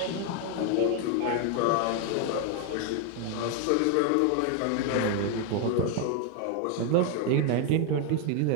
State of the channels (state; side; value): different; both; correlation 0.01